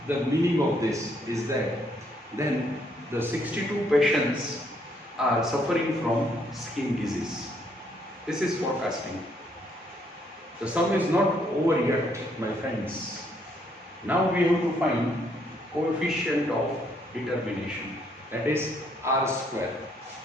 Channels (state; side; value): normal; both; correlation 0.70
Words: the meaning of this is that then the 62 patients are suffering from skin disease. This is forecasting. The sum is not over yet, my friends. Now we have to find coefficient of determination, that is r square.